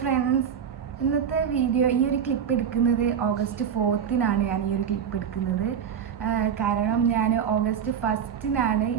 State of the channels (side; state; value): left; quieter; 7.9 dB